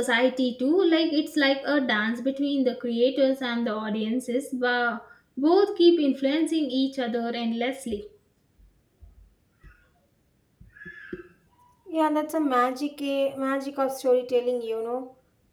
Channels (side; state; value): both; identical; correlation 1.00